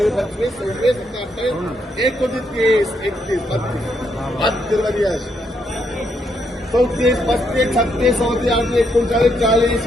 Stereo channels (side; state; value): both; normal; correlation 0.76